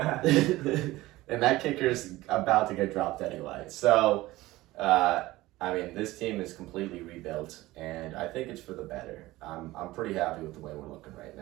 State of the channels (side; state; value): left; quieter; 18.2 dB